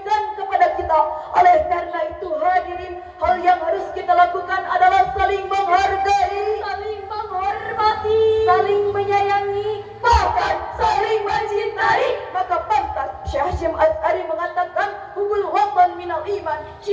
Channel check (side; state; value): both; identical; correlation 1.00